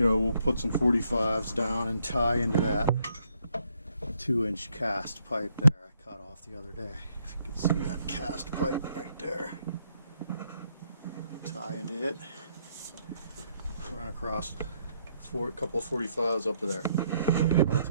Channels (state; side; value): inverted; both; correlation -0.72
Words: put some 45s down and tie into that 2-inch cast pipe there I cut off the other day. If you can see that cast pipe right there. Tie into it. Run across a couple of 45s up to there. That'll